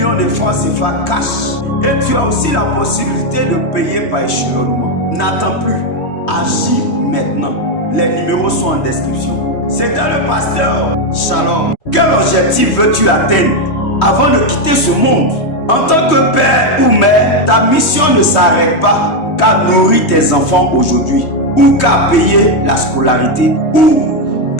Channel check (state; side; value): late; right; 3.2 ms